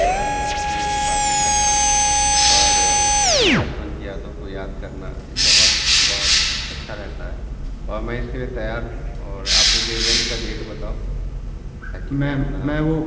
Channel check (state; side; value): identical; both; correlation 1.00